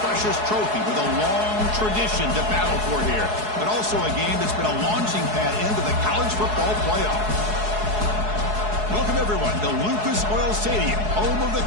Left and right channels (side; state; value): left; late; 4.7 ms